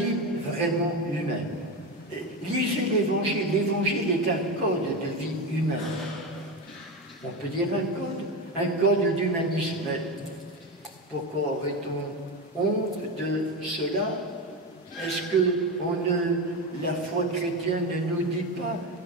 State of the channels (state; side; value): normal; both; correlation 0.18